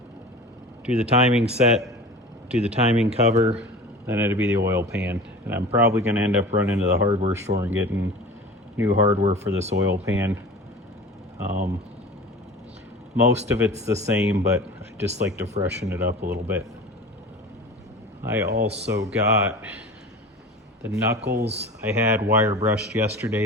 do the timing set, do the timing cover, then it'll be the oil pan. And I'm probably going to end up running to the hardware store and getting new hardware for this oil pan. Most of it's the same, but I just like to freshen it up a little bit. I also got the knuckles. I had wire brushed yesterday,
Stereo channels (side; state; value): both; normal; correlation 0.37